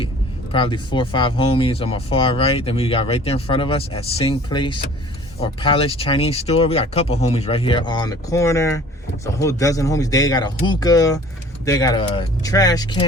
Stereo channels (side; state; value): both; normal; correlation 0.48